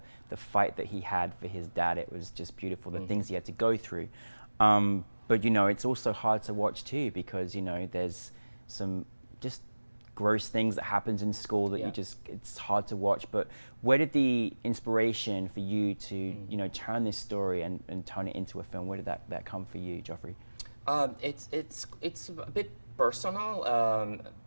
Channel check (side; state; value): both; inverted; correlation -1.00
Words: fight that he had for his dad. It was just beautiful, the things he had to go through. But you know, it's also hard to watch too, because you know, there's some just gross things that happens in school that it's hard to watch. But where did the inspiration for you to you know, turn this story and turn it into a film, where did that come for you, Joffre? It's a bit personal.